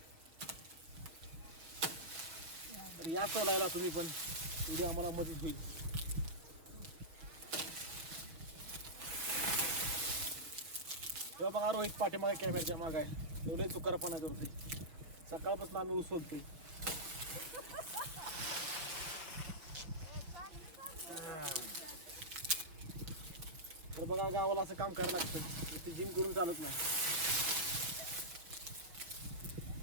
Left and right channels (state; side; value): late; left; 6.0 ms